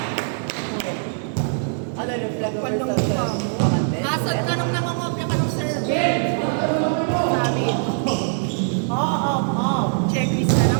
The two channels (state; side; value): silent; left; 64 dB below the other